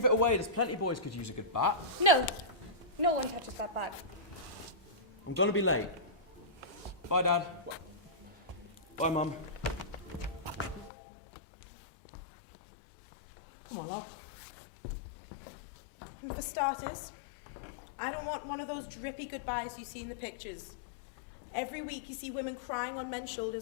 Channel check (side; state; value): right; drops out; at 10.9 s